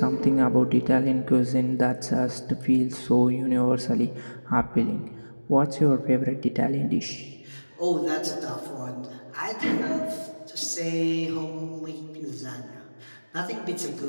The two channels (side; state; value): both; inverted; correlation -1.00